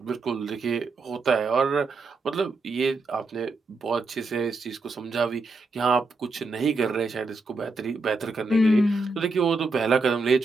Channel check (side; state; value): left; quieter; 3.5 dB